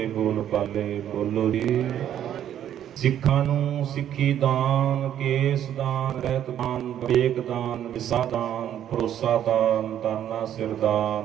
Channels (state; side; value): quieter; left; 10.5 dB